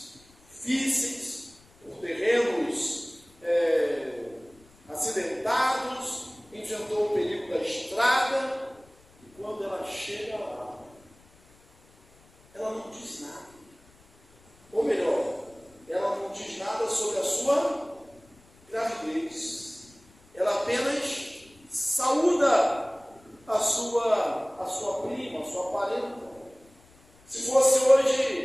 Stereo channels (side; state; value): left; noise; rumble, 29 dB below the sound